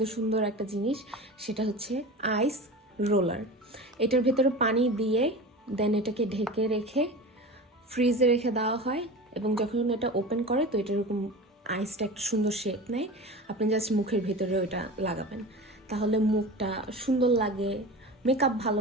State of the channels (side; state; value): both; normal; correlation 0.32